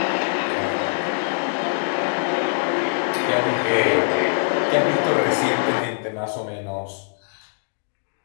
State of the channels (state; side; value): silent; right; digital silence